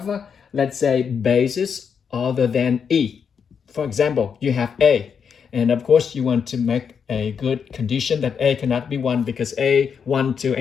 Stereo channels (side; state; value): right; quieter; 6.8 dB